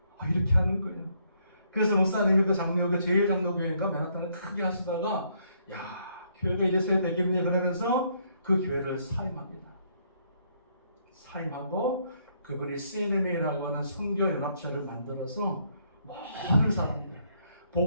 이렇게 하는 거예요. 그래서 목사님이 그 장로교 제1장로교회인가 맨하탄을 크게 하시다가 야 교회가 이래서야 되겠니 그러면서 그 교회를 사임합니다. 사임하고 그분이 CNMA라고 하는 선교연합체를 만들어서 모든 사람들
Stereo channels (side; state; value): both; inverted; correlation -0.71